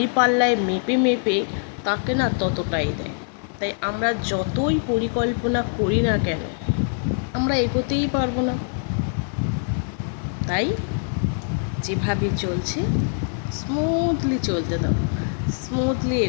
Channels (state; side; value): silent; right; 63 dB below the other